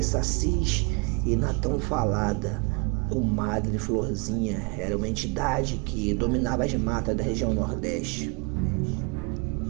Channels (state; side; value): quieter; left; 31.0 dB